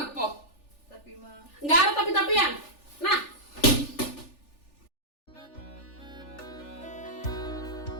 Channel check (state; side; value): late; right; 3.4 ms